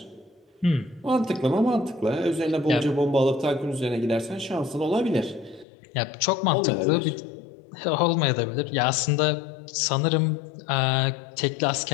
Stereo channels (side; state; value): right; drops out; at 5.7 s